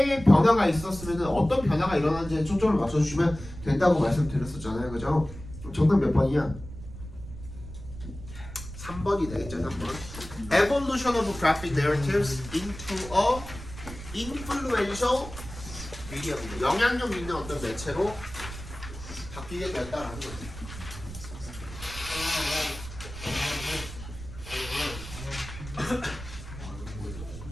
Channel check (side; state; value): right; noise; rumble, 12 dB below the sound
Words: 변화가 있었으면 어떤 변화가 일어났는지에 초점을 맞춰주시면 된다고 말씀드렸었잖아요, 그죠? 정답 몇 번이야? 3번이 되겠죠, 3번. Evolution of graphic narratives into a influential medium. 영향력 있는 어떤 매체로 바뀌게 됐다라는 거지.